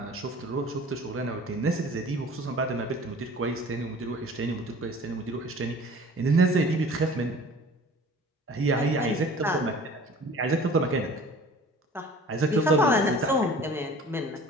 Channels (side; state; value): both; normal; correlation 0.45